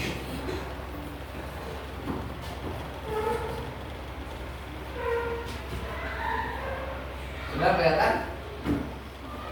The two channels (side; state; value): both; identical; correlation 1.00